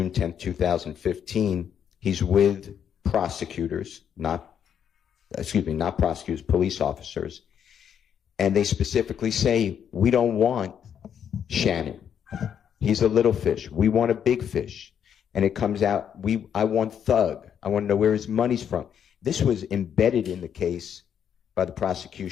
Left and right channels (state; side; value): quieter; right; 8.5 dB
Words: 10, 2015, he's with prosecutors, not prosecutors, police officers. And they specifically say, we don't want Shannon. He's a little fish. We want a big fish. And it comes out, I want Thug. I want to know where his money's from. This was embedded in the case by the